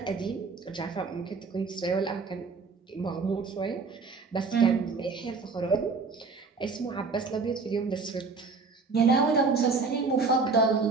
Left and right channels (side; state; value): left; quieter; 4.5 dB